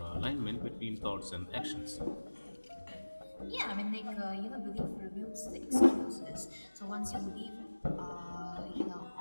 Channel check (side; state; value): both; inverted; correlation -1.00